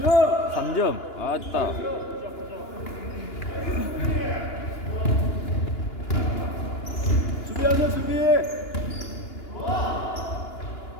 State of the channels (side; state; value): right; late; 2.9 ms